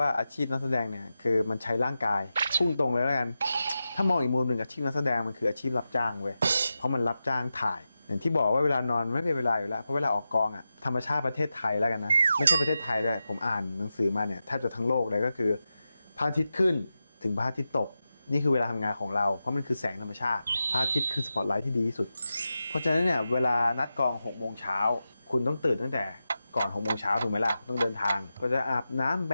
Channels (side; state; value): both; inverted; correlation -0.91